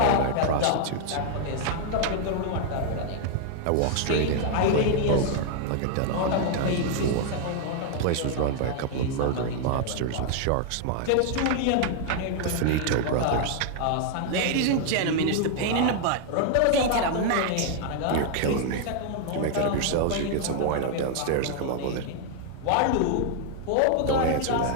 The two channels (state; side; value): different; both; correlation 0.00